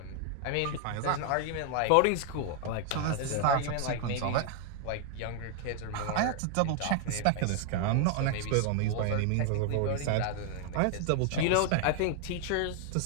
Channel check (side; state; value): both; different; correlation 0.00